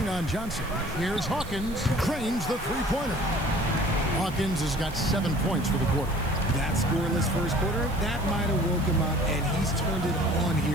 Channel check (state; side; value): noise; right; hiss, 19 dB below the sound